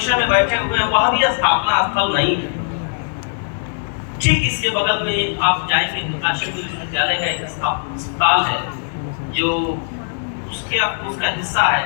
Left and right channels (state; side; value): silent; right; digital silence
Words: में बैठे हुए हैं, वह भी स्थापना स्थल नहीं है। ठीक इसके बगल में आप जाएंगे तो काशी विश्वविद्यालय का एक अस्पताल है जो उसका हिस्सा है,